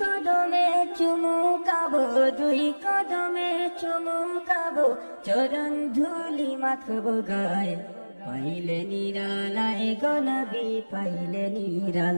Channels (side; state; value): both; inverted; correlation -1.00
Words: চুমু খাবো, দুই কদমে চুমু খাবো, চরণ ধুলি মাখবো গায়ে। পাইলে নিরালায় গনবি, পাইলে